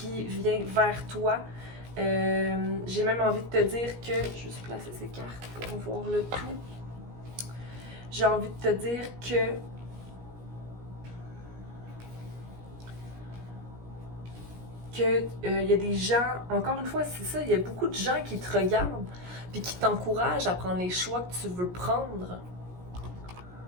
vient vers toi. J'ai même envie de te dire que... Je vais juste placer ces cartes pour voir le tout. J'ai envie de te dire que... il y a des gens, encore une fois, c'est ça, il y a beaucoup de gens qui te regardent puis qui t'encouragent à prendre les choix que tu veux prendre.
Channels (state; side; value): late; left; 17 ms